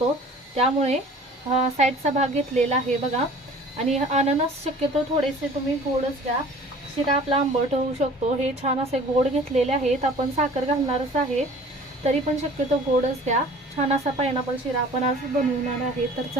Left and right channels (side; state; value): both; normal; correlation 0.47